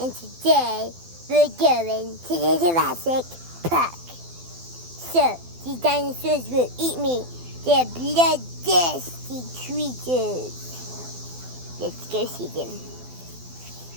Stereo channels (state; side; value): late; left; 12 ms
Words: today we're going to the Jurassic Park. So, these dinosaurs will eat me. They're bloodthirsty creatures. Let's go see them.